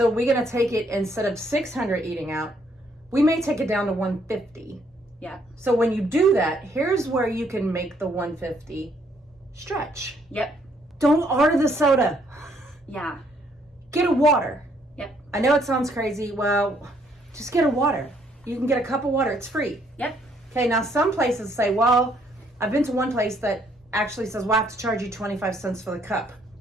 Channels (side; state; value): both; normal; correlation 0.68